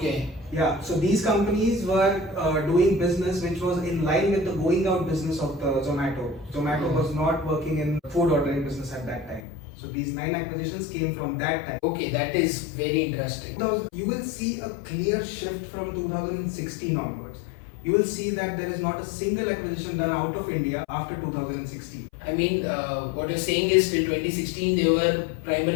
Yeah, so these companies were doing business which was in line with the going out business of the Zomato. Zomato was not working in food ordering business at that time. So these 9 acquisitions came from that time. Okay, that is very interesting. Now, you will see a clear shift from 2016 onwards. You will see that there is not a single acquisition done out of India after 2016. I mean, what you're saying is till 2016 they were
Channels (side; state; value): right; drops out; at 9.4 s